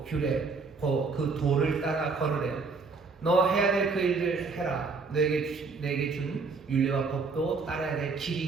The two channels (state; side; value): quieter; left; 4.4 dB